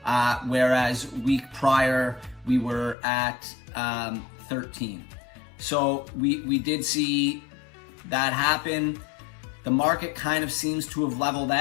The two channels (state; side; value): drops out; right; at 3.0 s